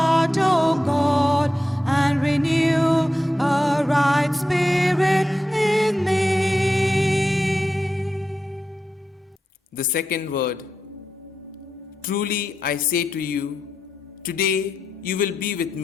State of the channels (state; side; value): normal; both; correlation 0.88